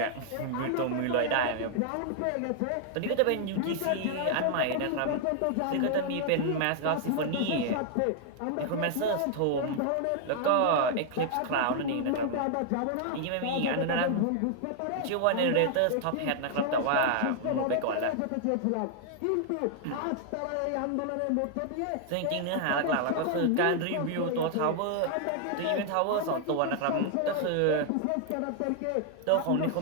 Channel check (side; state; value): both; different; correlation 0.00